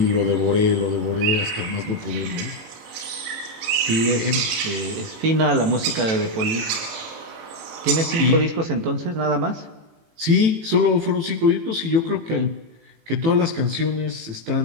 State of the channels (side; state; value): left; late; 18 ms